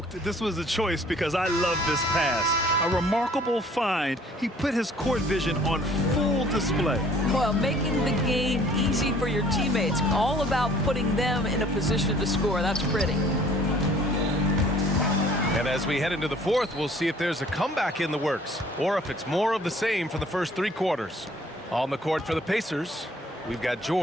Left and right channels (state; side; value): normal; both; correlation 0.55